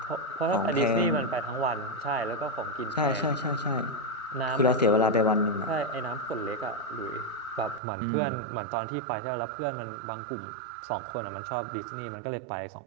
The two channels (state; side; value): drops out; left; at 7.8 s